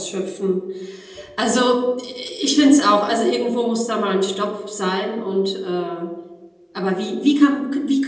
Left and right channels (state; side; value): identical; both; correlation 1.00